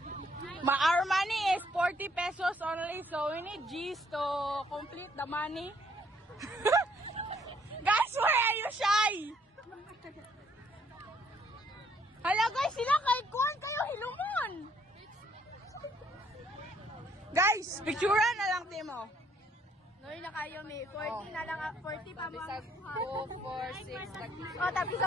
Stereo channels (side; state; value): both; normal; correlation 0.66